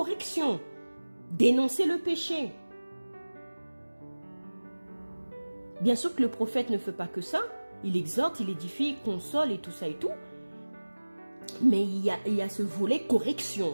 dénoncer le péché. Bien sûr que le prophète ne fait pas que ça, il exhorte, il édifie, il console et tout ça et tout, mais il y a ce volet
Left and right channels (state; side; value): inverted; both; correlation -1.00